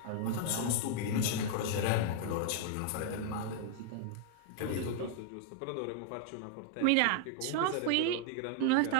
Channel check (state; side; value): different; both; correlation 0.00